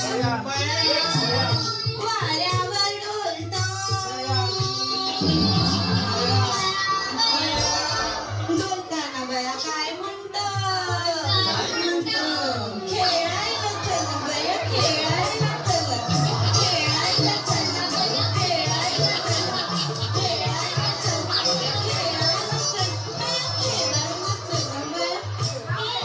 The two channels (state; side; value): identical; both; correlation 1.00